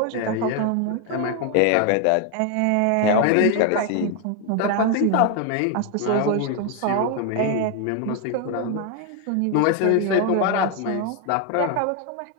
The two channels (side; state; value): both; different; correlation 0.01